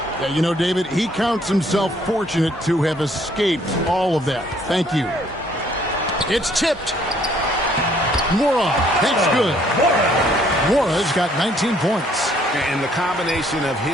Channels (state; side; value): normal; both; correlation 0.64